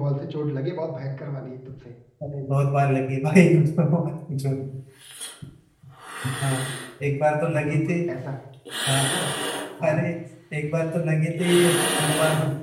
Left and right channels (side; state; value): both; identical; correlation 1.00